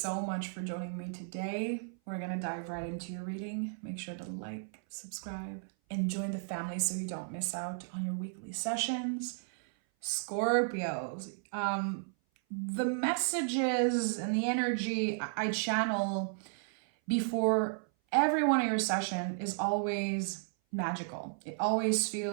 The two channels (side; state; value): left; silent; 55 dB below the other